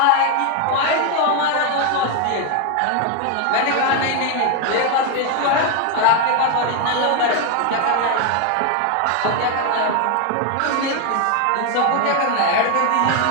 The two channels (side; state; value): both; different; correlation 0.01